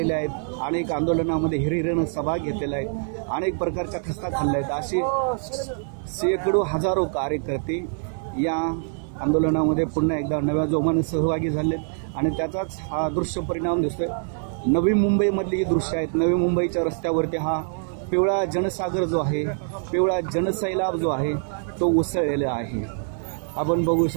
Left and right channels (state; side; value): silent; left; 62 dB below the other